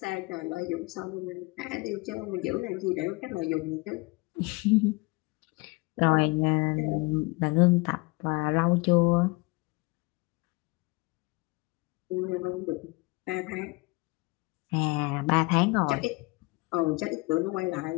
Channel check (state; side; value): quieter; right; 25.7 dB